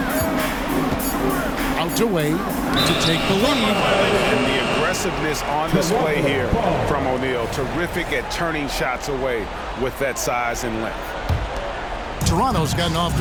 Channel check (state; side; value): identical; both; correlation 1.00